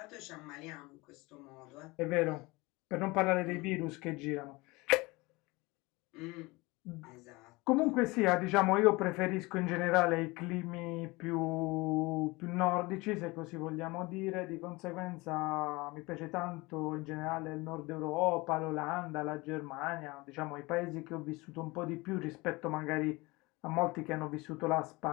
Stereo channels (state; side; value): quieter; right; 23.4 dB